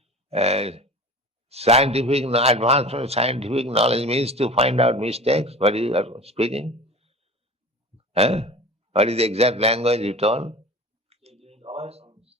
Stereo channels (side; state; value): both; normal; correlation 0.36